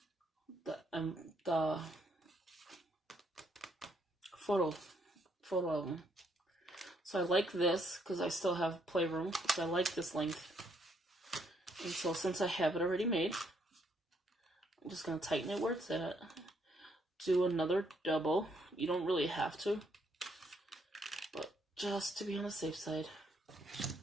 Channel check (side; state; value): both; normal; correlation 0.72